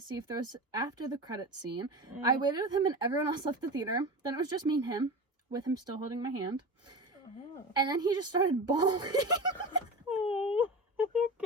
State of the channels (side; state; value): both; normal; correlation 0.28